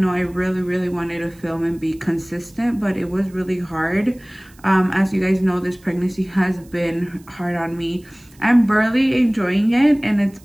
I really wanted to film and be consistent, but it was really hard. As you guys know, this pregnancy has been hard on me. I'm barely enjoying it, and it's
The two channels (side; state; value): right; noise; hiss, 28 dB below the sound